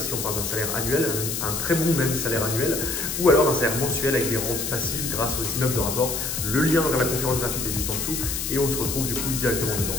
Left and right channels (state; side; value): noise; left; hiss, 3 dB below the sound